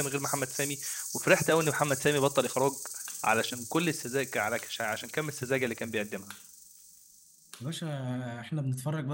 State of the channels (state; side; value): identical; both; correlation 1.00